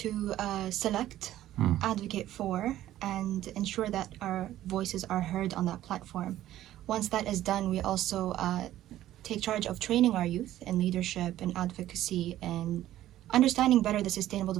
to select, advocate for, and ensure that our voices are heard on that platform. Once that is done, we also take charge of training our youth in leadership and advocacy and understanding better the Sustainable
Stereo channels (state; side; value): quieter; left; 13.5 dB